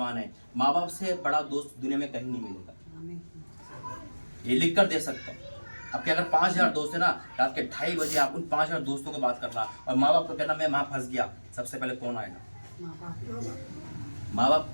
है, माँ बाप से बड़ा दोस्त दुनिया में कहीं नहीं मिलेगा। ये लिख कर दे सकता हूँ। आपके अगर 5000 दोस्त है ना, रात के 2:30 बजे आप उन 5000 दोस्तों को बात करना और माँ बाप को कहना मैं वहां फंस गया, सबसे पहले कौन आएगा? माँ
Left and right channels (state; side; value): inverted; both; correlation -1.00